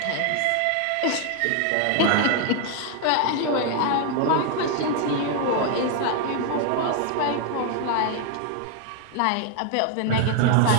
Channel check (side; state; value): both; different; correlation 0.01